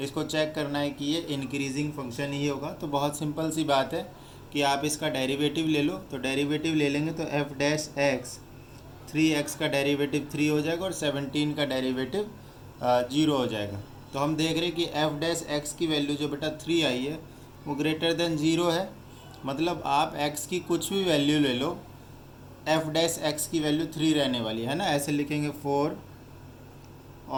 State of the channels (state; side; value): identical; both; correlation 1.00